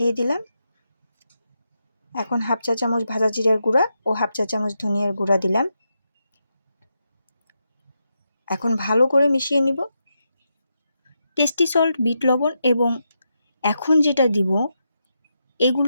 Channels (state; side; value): inverted; both; correlation -0.85